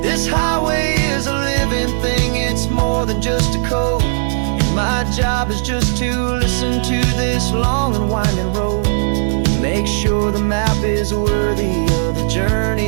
This highway is a living thing, it's more than just a code. And my job is just to listen to this long and winding road, make sure the map is worthy of the journey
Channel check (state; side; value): silent; left; digital silence